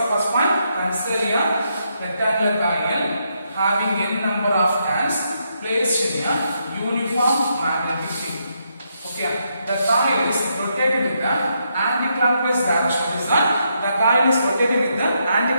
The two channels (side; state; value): both; inverted; correlation -0.79